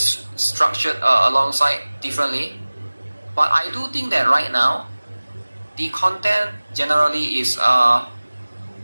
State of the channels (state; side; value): inverted; both; correlation -1.00